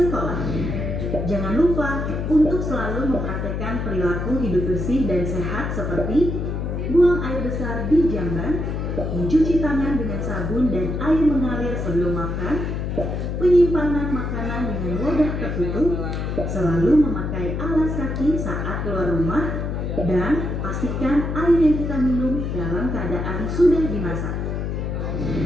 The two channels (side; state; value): left; noise; hum, 2 dB below the sound